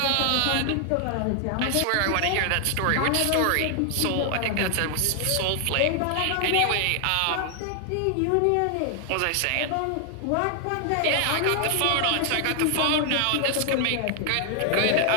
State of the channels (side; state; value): both; different; correlation 0.00